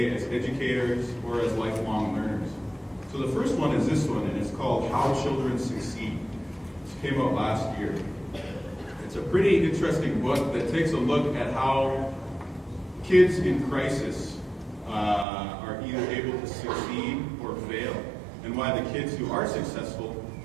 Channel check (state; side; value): drops out; left; at 15.2 s